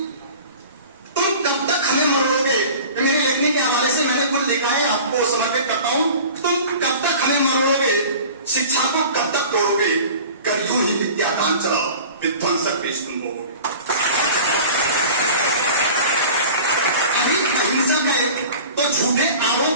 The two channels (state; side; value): inverted; both; correlation -0.41